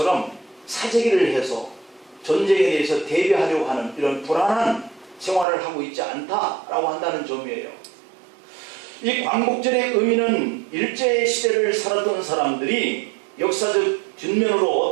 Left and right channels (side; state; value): left; drops out; at 5.5 s